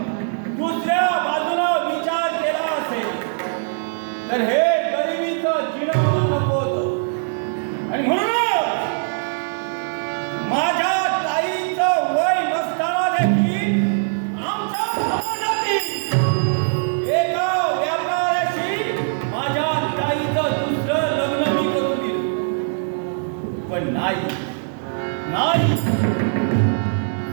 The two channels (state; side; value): silent; left; 63 dB below the other